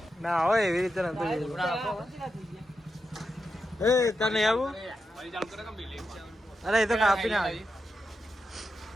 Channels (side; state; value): both; normal; correlation 0.87